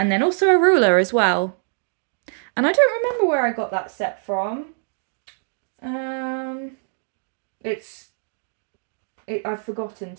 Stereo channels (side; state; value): left; silent; digital silence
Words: then also a ruler as well. And I don't remember where I got that set from. Um, I've forgotten,